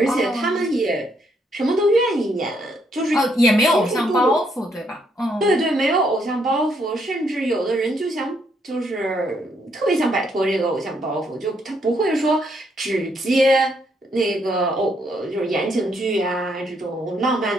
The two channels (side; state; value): both; normal; correlation 0.73